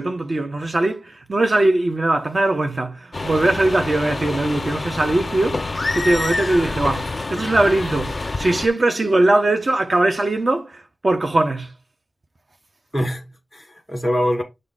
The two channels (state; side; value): normal; both; correlation 0.95